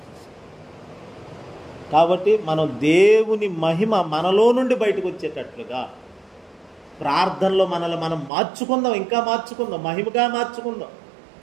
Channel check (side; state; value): left; drops out; at 8.3 s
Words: కాబట్టి మనం దేవుని మహిమ మనలో నుండి బయటకు వచ్చేటట్లుగా ప్రార్థనలో మనల్ని మనం మార్చుకుందాం, ఇంకా మార్చుకుందాం, మహిమగా మార్చుకుందాం,